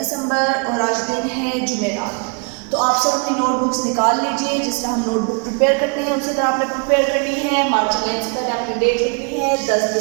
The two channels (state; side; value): quieter; left; 36.0 dB